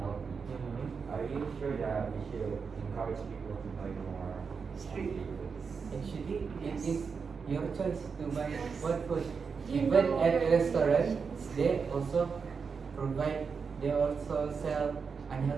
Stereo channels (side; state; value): left; quieter; 5.6 dB